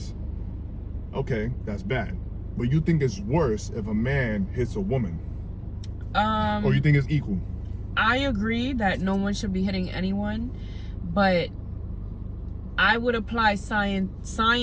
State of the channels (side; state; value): both; identical; correlation 1.00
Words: okay, that's bad. But you think it's worse if a man hits a woman? Or you think it's equal? I agree that no one should be hitting anyone, but I would apply